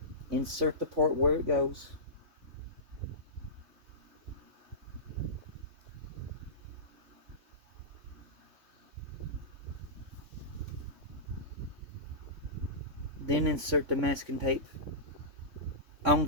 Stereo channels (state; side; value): late; left; 3.5 ms